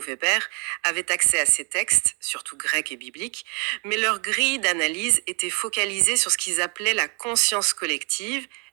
avaient accès à ces textes, surtout grecs et bibliques, mais leur grille d'analyse était focalisée sur ce qu'ils appelaient la conscience collective,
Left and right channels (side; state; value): left; quieter; 34.7 dB